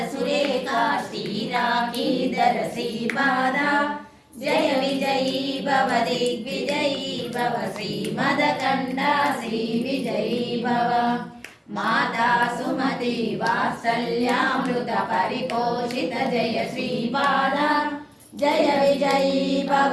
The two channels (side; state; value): both; identical; correlation 1.00